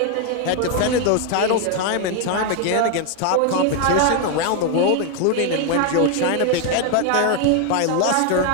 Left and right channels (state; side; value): different; both; correlation 0.01